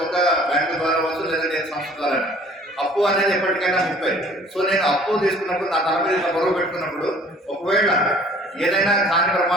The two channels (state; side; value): normal; both; correlation 0.52